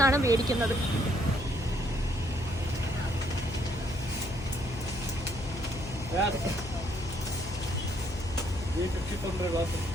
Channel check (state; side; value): noise; left; hum, 11 dB below the sound